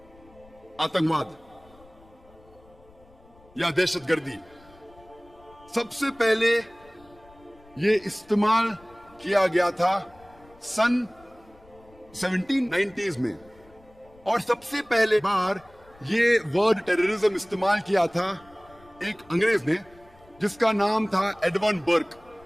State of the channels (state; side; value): noise; left; rumble, 27 dB below the sound